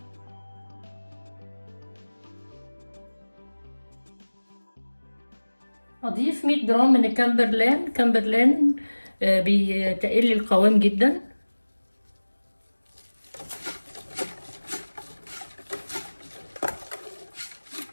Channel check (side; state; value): both; inverted; correlation -1.00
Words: هضيف 100 جرام من كامبرلان بيتقل لي القوام جدا.